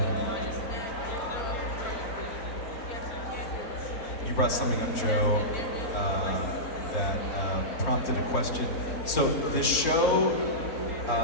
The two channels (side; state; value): right; late; 4.3 ms